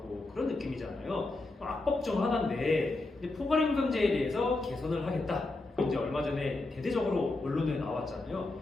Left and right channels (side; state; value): right; quieter; 3.0 dB